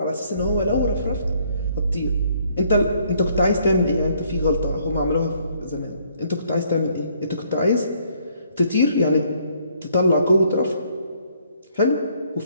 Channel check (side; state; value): both; inverted; correlation -0.66